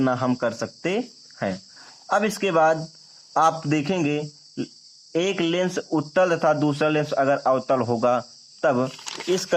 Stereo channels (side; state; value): both; identical; correlation 1.00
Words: हम कर सकते हैं। अब इसके बाद आप देखेंगे एक लेंस उत्तल तथा दूसरा लेंस अगर अवतल होगा, तब इस